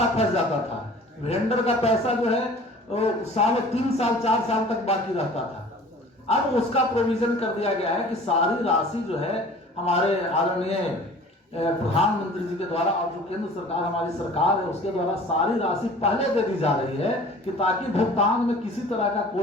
फंस जाता था। वेंडर का पैसा जो है साल 3 साल 4 साल तक बाकी रहता था। अब उसका प्रोविजन कर दिया गया है कि सारी राशि जो है हमारे आदरणीय प्रधानमंत्री जी के द्वारा और जो केंद्र सरकार हमारी सरकार है उसके द्वारा सारी राशि पहले दे दी जा रही है कि ताकि भुगतान में किसी तरह का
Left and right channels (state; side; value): normal; both; correlation 0.46